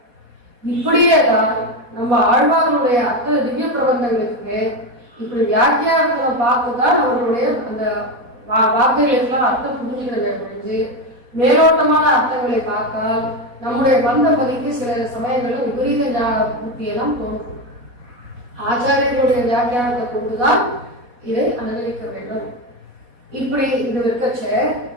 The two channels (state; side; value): late; left; 4.2 ms